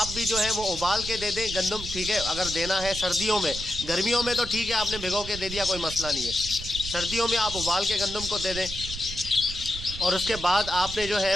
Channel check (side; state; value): right; noise; rumble, 10 dB below the sound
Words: भी जो है वो उबाल के दे दें गंदम, ठीक है, अगर देना है सर्दियों में। गर्मियों में तो ठीक है आपने भिगो के दे दिया, कोई मसला नहीं है। सर्दियों में आप उबाल के गंदम को दे दें, और उसके बाद आपने जो